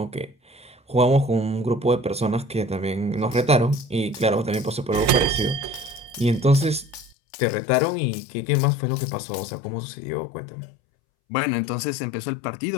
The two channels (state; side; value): drops out; right; at 7.2 s